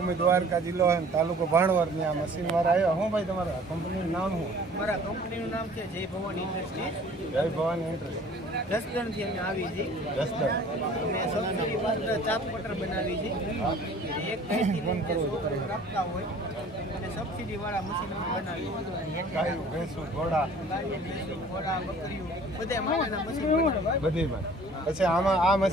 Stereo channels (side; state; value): both; normal; correlation 0.50